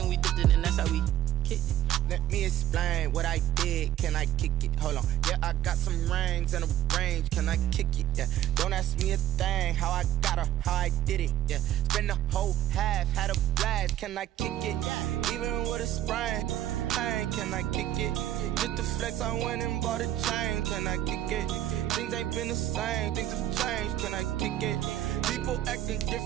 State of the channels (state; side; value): quieter; left; 12.5 dB